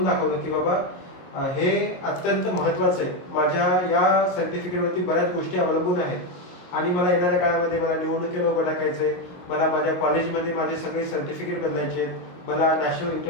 दाखवलं की बाबा हे अत्यंत महत्वाचं आहे. माझ्या या सर्टिफिकेटवरती बऱ्याच गोष्टी अवलंबून आहेत आणि मला येणाऱ्या काळामध्ये मला निवडणुकीला उभं टाकायचंय, मला माझ्या कॉलेजमध्ये माझे सगळे सर्टिफिकेट बदलायचे, मला नॅशनल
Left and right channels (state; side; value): late; right; 22 ms